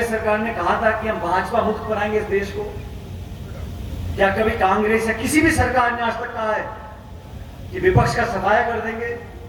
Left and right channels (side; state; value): both; identical; correlation 1.00